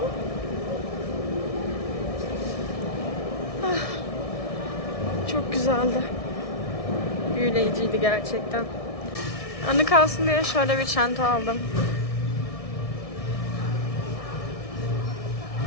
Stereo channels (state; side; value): late; right; 1.6 ms